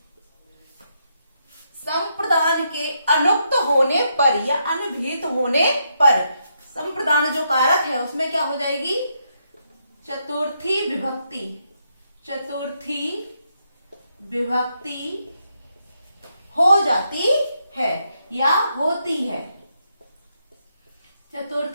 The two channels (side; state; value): both; inverted; correlation -0.79